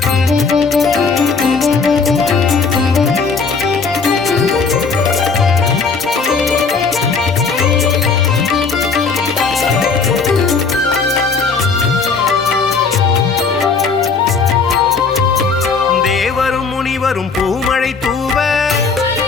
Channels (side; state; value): right; quieter; 4.9 dB